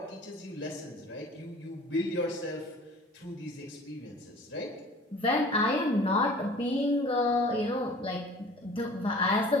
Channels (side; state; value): both; normal; correlation 0.46